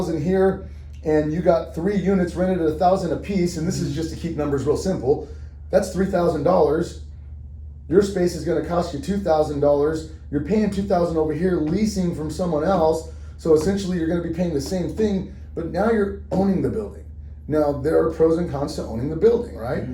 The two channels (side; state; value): both; identical; correlation 1.00